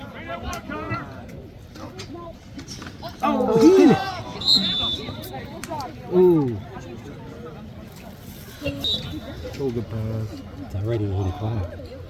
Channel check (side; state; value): both; identical; correlation 1.00